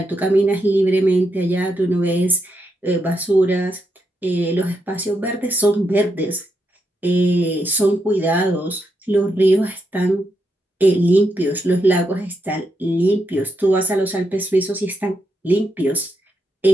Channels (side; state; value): both; normal; correlation 0.82